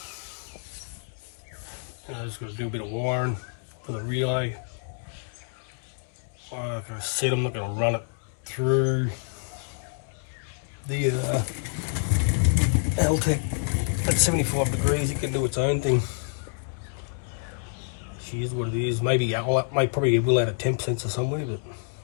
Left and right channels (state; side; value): silent; right; digital silence